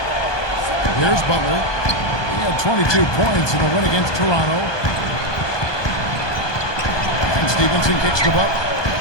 Here's Butler. He had 22 points in the win against Toronto. And Stevenson kicks to Butler.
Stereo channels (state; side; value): late; right; 1.2 ms